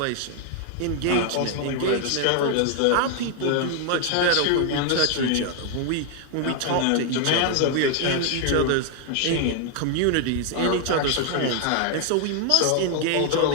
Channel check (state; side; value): different; both; correlation 0.00